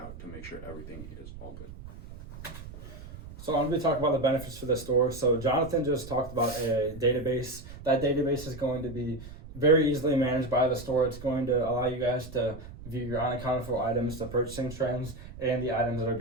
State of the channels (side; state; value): right; noise; rumble, 14 dB below the sound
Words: to make sure everything is all good. So I'm going to be talking about the benefits for the store. So Jonathan just talked about a database. That database is going to be very easily managed by the store. It's going to allow you guys to view your unaccounted for items, the purchasing trends, and the items that are